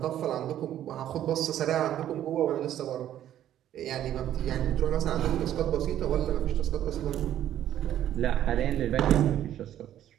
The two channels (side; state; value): left; quieter; 11.6 dB